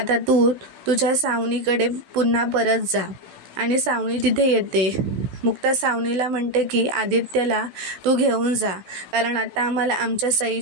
तू तुझ्या सावनीकडे पुन्हा परत जा. आणि सावनी तिथे येते. मुक्ता सावनीला म्हणते की आदित्यला तू घेऊन जा, कारण आता आम्हाला आमच्या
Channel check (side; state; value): left; late; 16 ms